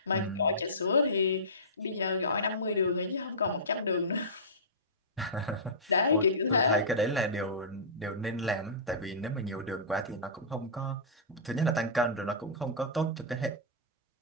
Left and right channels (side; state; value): both; normal; correlation -0.20